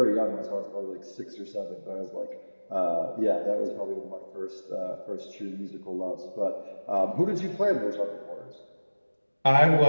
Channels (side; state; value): both; inverted; correlation -1.00